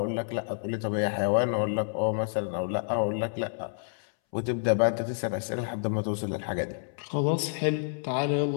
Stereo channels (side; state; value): right; silent; 59 dB below the other